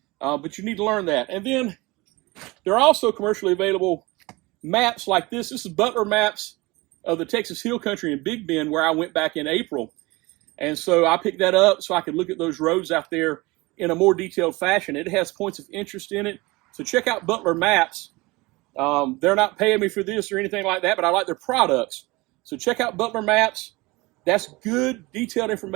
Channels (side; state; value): left; quieter; 22.8 dB